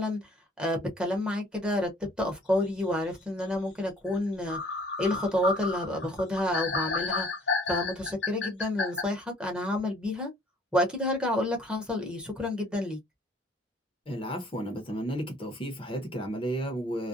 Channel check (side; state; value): both; normal; correlation 0.57